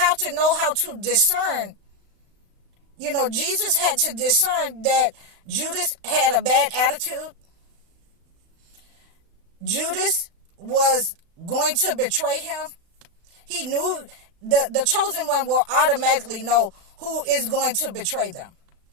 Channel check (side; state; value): left; late; 35 ms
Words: to know how to discern. Jesus had to discern that Judas had a bad attitude. Judas was going to betray him. He knew the chosen one will automatically know who is going to betray them.